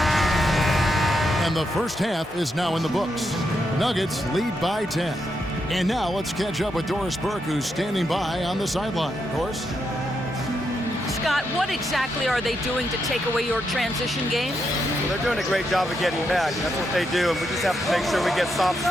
And the first half is now in the books. Nuggets lead by 10. And now let's catch up with Doris Burke, who's standing by on the sideline. Doris? Scott, what exactly are they doing to take away your transition game? Well, they're doing a great job of getting back. That's what they do, and we just have to make sure we get stops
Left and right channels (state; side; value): normal; both; correlation 0.82